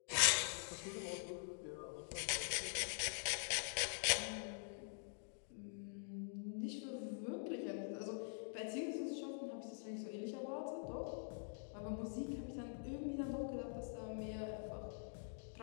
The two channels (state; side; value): silent; right; digital silence